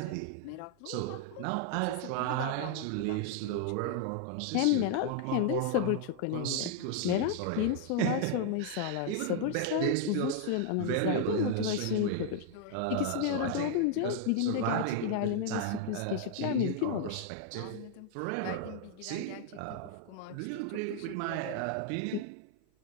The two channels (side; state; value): both; different; correlation 0.00